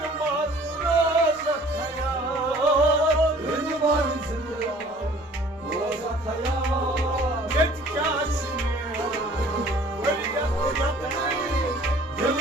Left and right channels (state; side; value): normal; both; correlation 0.52